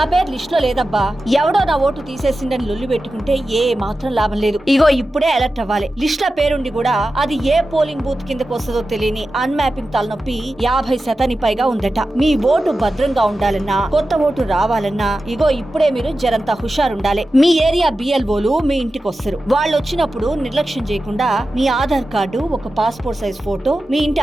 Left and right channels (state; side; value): normal; both; correlation 0.93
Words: పేరు లిస్ట్ లో లేదబ్బా, ఎవడో నా ఓటు తీసేసిందని లొల్లి పెట్టుకుంటే ఏ మాత్రం లాభం లేదు. ఇగో ఇప్పుడే అలర్ట్ అవ్వాలి. లిస్ట్ లో పేరుండి కూడా అది ఏ పోలింగ్ బూత్ కిందకు వస్తుందో తెలియని అన్మ్యాపింగ్ తలనొప్పి 50% పైగా ఉందట. మీ ఓటు భద్రంగా ఉండాలన్నా, కొత్త ఓటు రావాలన్నా ఇగో ఇప్పుడే మీరు జరంతా హుషారుండాలి. మీ ఏరియా బిఎల్ఓలు మీ ఇంటికి వస్తారు. వాళ్ళు వచ్చినప్పుడు నిర్లక్ష్యం చేయకుండా మీ ఆధార్ కార్డు, ఒక పాస్పోర్ట్ సైజ్ ఫోటో, మీ ఇంటి